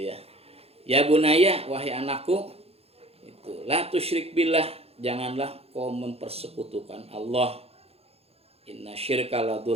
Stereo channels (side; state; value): left; late; 0.29 ms